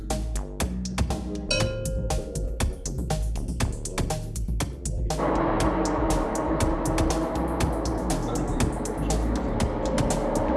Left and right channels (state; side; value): identical; both; correlation 1.00